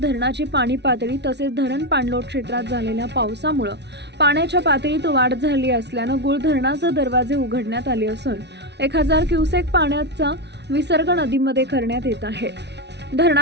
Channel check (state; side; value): late; left; 0.50 ms